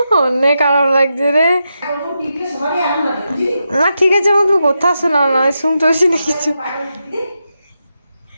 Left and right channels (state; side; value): inverted; both; correlation -0.87